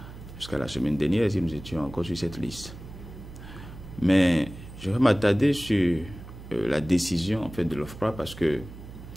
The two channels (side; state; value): right; noise; hum, 14 dB below the sound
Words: la semaine dernière, si nous étions encore sur cette liste. Mais je vais m'attarder sur la décision en fait, de l'OFPRA parce que